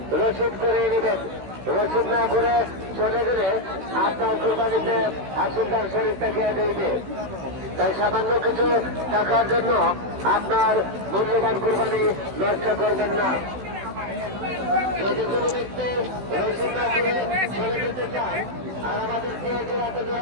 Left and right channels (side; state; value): left; late; 16 ms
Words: রসিদ করে নেবেন। রসিদ না করে চলে গেলে আপনার কুরবানিতে আসলদার শরীরটা গিয়ে দেবে। তাই সামান্য কিছু টাকার জন্য আপনার মূল্যবান কুরবানি নষ্ট করবেন না। যদি কোনো ব্যক্তি রসিদ না করে চলে যেতে চান আর আমাদেরকে জোড়াতে